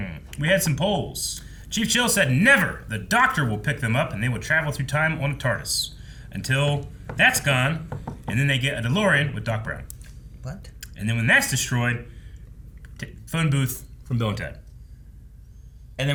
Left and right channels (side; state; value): both; identical; correlation 1.00